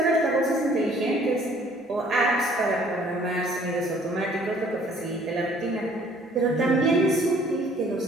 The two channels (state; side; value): normal; both; correlation 0.58